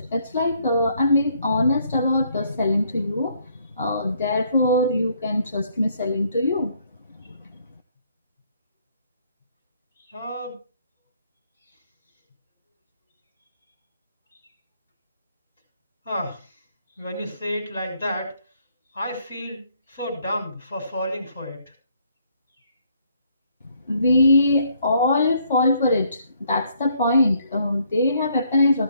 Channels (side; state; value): both; inverted; correlation -0.68